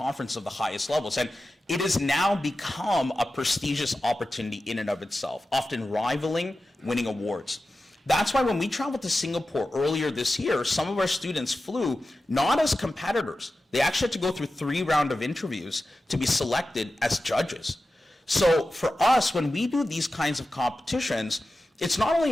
of the highest levels. And it has now become a prestigious opportunity in and of itself, often rivaling winning awards. That's why when we traveled to Singapore earlier this year, some of our students flew not as competitors. They actually had to go through 3 rounds of interviews to be selected as judges. So for us, when we do these kinds of competitions, it's not only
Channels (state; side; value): normal; both; correlation 0.93